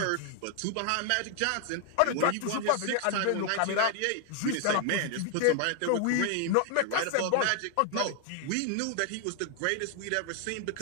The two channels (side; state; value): both; different; correlation 0.00